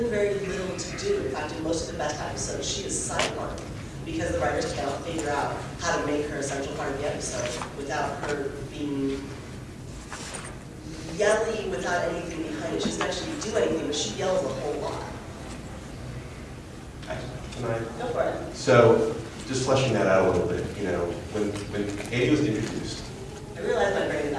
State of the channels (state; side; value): identical; both; correlation 1.00